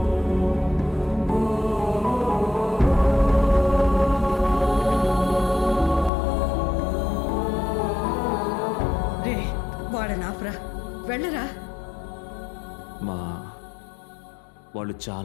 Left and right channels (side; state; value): right; drops out; at 6.1 s